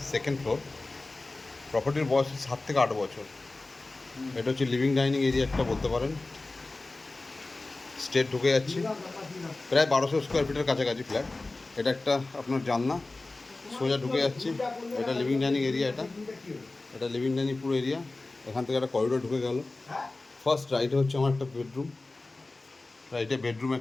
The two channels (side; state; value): right; quieter; 3.2 dB